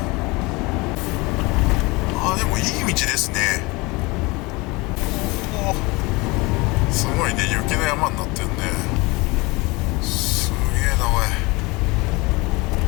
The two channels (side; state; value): right; quieter; 24.5 dB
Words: な。でもいい道ですね。すごいね、雪の山になってるね。すげえなおい。